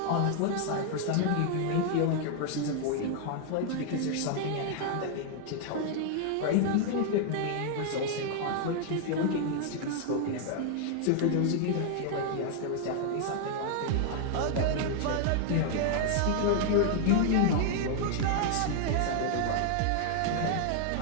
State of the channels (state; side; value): different; both; correlation 0.00